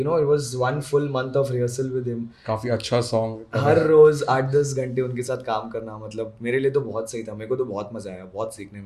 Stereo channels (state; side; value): identical; both; correlation 1.00